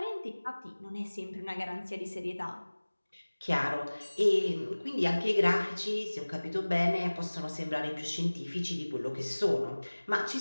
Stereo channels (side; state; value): both; inverted; correlation -1.00